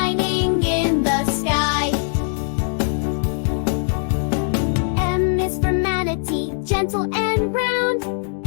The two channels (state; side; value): silent; right; digital silence